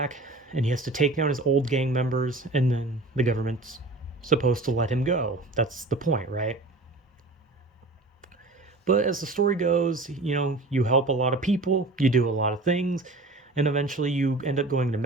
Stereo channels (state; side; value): quieter; left; 3.1 dB